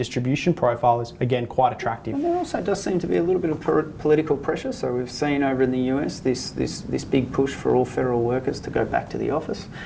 profile is again quite attractive. And there also does seem to be a little bit of political pressure. So we've seen over in the US this big push for all federal workers to go back to the office.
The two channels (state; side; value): identical; both; correlation 1.00